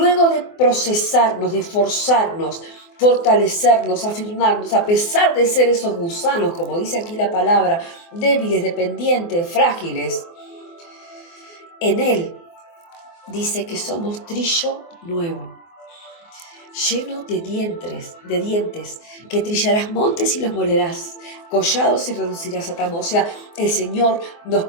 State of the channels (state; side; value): late; right; 24 ms